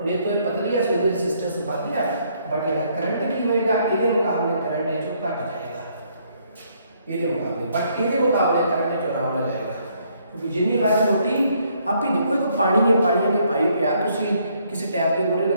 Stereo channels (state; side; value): inverted; both; correlation -0.69